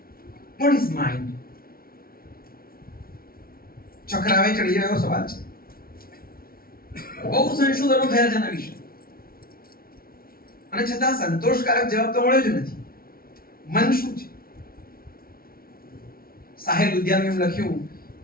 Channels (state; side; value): late; right; 0.43 ms